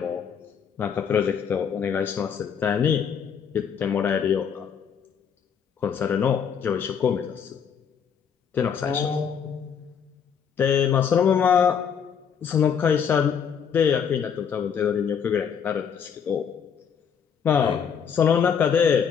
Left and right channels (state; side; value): quieter; right; 7.3 dB